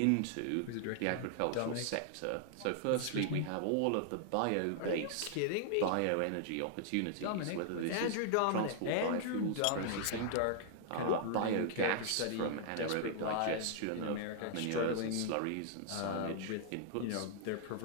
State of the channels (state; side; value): different; both; correlation -0.01